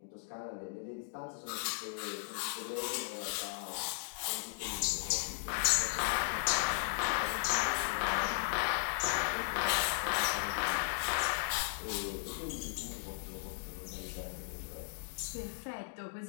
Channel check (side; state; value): right; silent; digital silence